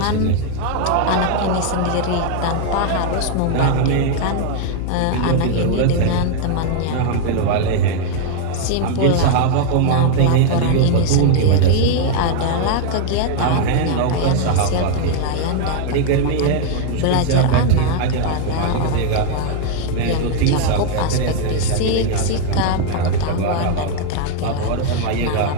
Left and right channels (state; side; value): different; both; correlation 0.00